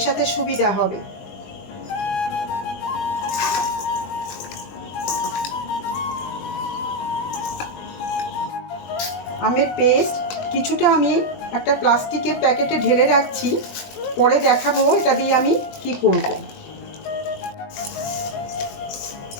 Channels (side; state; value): right; late; 20 ms